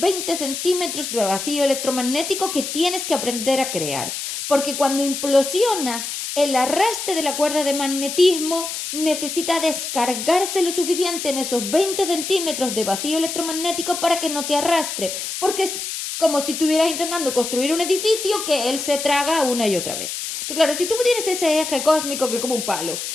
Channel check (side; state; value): left; noise; hiss, 5 dB below the sound